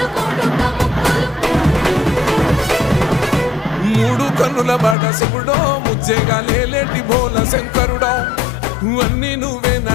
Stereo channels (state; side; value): drops out; right; at 5.0 s